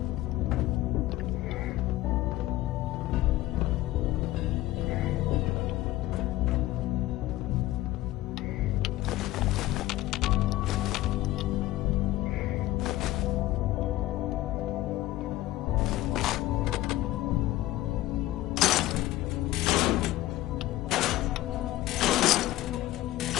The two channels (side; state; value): right; quieter; 16.1 dB